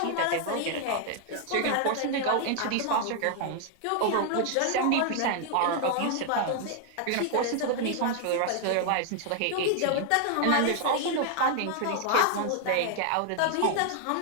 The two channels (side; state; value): both; different; correlation 0.00